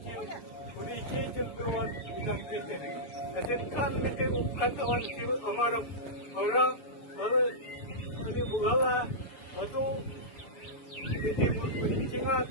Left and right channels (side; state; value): right; late; 6.7 ms